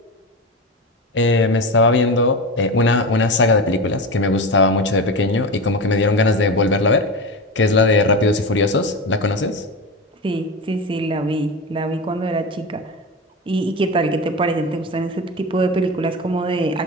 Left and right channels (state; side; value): normal; both; correlation 0.22